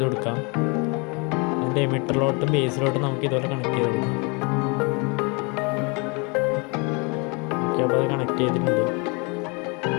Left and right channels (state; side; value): quieter; right; 31.0 dB